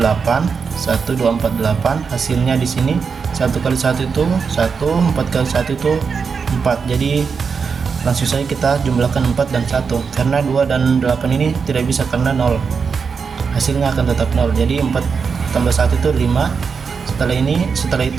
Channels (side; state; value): left; quieter; 5.6 dB